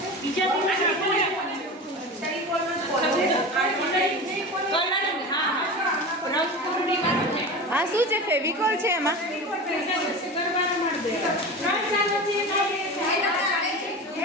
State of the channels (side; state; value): both; normal; correlation 0.29